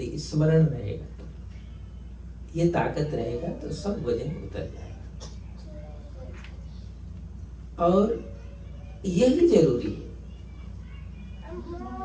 स्मरण रहेगा, तो ये ताकत रहेगा तो सब वजन उतर जाएगा। और यही जरूरी है।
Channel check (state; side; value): identical; both; correlation 1.00